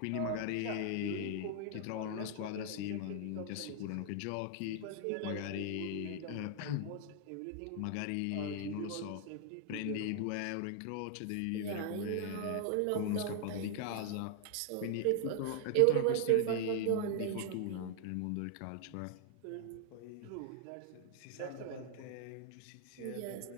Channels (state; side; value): different; both; correlation 0.00